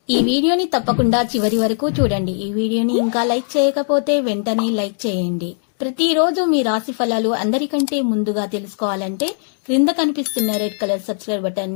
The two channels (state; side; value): silent; right; digital silence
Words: ఈ వీడియోని తప్పకుండా చివరి వరకు చూడండి. ఈ వీడియోని ఇంకా లైక్ చేయకపోతే వెంటనే లైక్ చేయండి. ప్రతిరోజు మీ రాశి ఫలాలు అందరికంటే ముందుగా తెలుసుకోవాలంటే క్రింద కనిపిస్తున్న రెడ్ కలర్ సబ్స్క్రైబ్